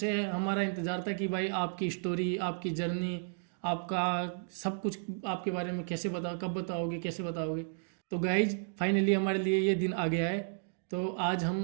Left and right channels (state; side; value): silent; left; digital silence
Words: हमारा इंतज़ार था कि भाई आपकी स्टोरी, आपकी जर्नी, आपका सब कुछ आपके बारे में कैसे कब बताओगे, कैसे बताओगे। तो गाइज फाइनली हमारे लिए ये दिन आ गया है। तो आज